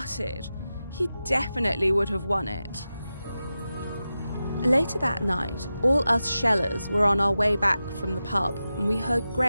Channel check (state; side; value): inverted; both; correlation -0.93